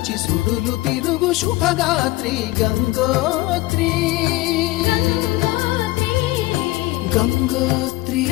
సుడులు తిరుగు శుభగాత్రి గంగోత్రి గంగోత్రి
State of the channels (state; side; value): quieter; right; 19.2 dB